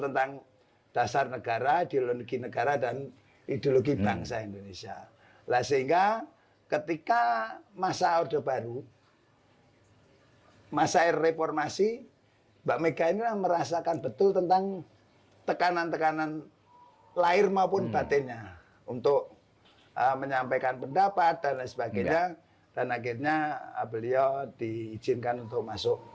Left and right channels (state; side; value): identical; both; correlation 1.00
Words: dasar negara, ideologi negara, dan ideologi bangsa Indonesia. Lah sehingga ketika masa Orde Baru, masa reformasi, Mbak Mega ini merasakan betul tentang tekanan-tekanan lahir maupun batinnya untuk menyampaikan pendapat dan lain sebagainya. Dan akhirnya beliau diizinkan untuk masuk